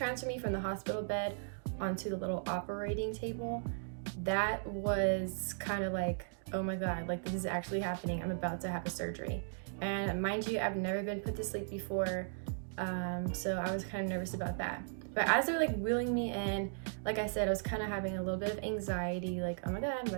me from the hospital bed onto the little operating table, that was kind of like, oh my god, like this is actually happening. I'm about to have a surgery. And mind you, I've never been put to sleep before, so I was kind of nervous about that. But as they're like wheeling me in, like I said, I was kind of having a little bit of anxiety, like, oh my god, I'm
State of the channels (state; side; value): silent; left; digital silence